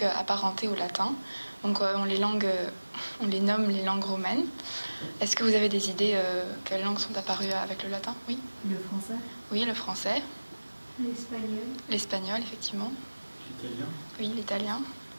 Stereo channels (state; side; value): inverted; both; correlation -1.00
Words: apparentées au latin. Donc on les nomme les langues romaines. Est-ce que vous avez des idées quelles langues sont apparues avec le latin? Oui. Le français. Oui, le français. L'espagnol. L'espagnol, effectivement. L'italien. Oui, l'italien.